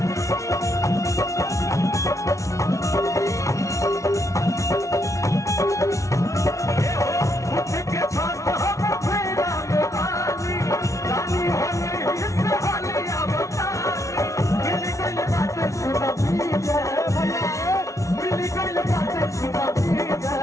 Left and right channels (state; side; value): late; right; 0.15 ms